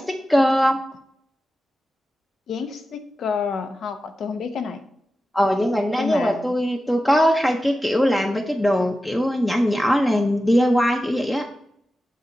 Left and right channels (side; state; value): both; normal; correlation 0.93